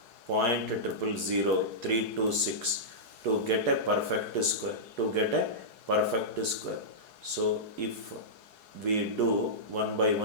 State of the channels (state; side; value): late; left; 4.7 ms